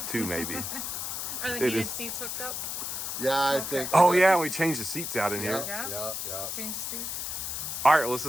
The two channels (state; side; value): noise; left; hiss, 4 dB below the sound